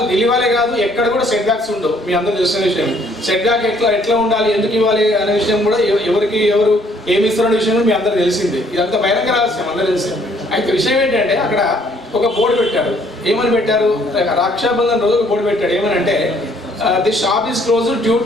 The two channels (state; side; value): normal; both; correlation 0.63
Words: ఢిల్లీ వాళ్ళే కాదు ఎక్కడ కూడా సెట్ బ్యాక్స్ ఉండవు. మీ అందరూ తెలిసిన విషయం. సెట్ బ్యాక్ ఎట్లా ఉండాలి, ఎందుకు ఇవ్వాలి అనే విషయం కూడా ఎవరు ఏమి ఇస్తున్న విషయం కూడా మీ అందరూ తెలిసిందే. ఇదంతా బహిరంగ రహస్యం, అందరూ తెలిసింది. అయితే విషయం ఏంటంటే అక్కడ ఒక బోర్డు పెట్టారు. ఏమని పెట్టారు? రక్షాబంధన్ రోజు ఒక బోర్డు పెట్టాడు. ఏమని అంటే the shop is close due